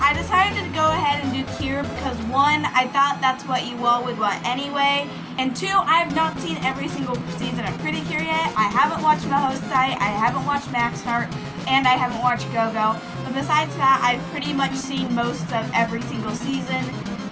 decided to go ahead and do cure because one, I thought that's what you all would want anyway, and two, I have not seen every single season of Precure yet. I haven't watched Majesty, I haven't watched Macaron, and I haven't watched Go-Go. But besides that, I've pretty much seen most of every single season,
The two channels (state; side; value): identical; both; correlation 1.00